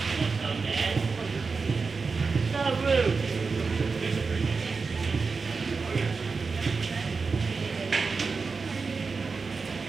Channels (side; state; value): left; quieter; 4.6 dB